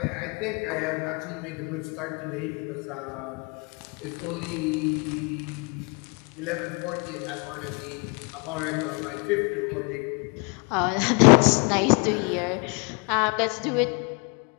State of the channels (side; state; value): right; quieter; 32.7 dB